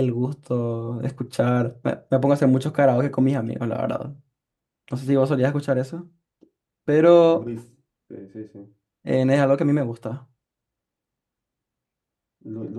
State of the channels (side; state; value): both; identical; correlation 1.00